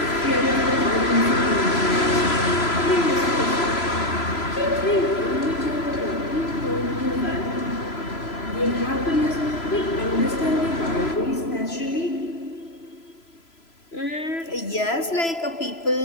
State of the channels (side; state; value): right; late; 3.0 ms